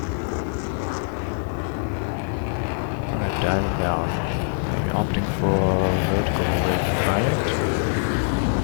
Alright, diving down. Maybe opting for vertical rate fight.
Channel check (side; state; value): right; silent; digital silence